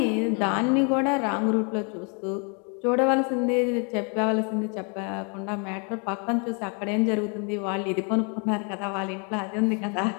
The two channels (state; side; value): quieter; right; 36.8 dB